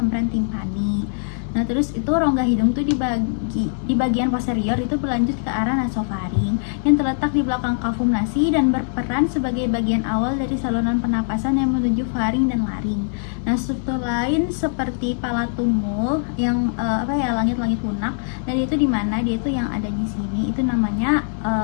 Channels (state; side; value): silent; right; digital silence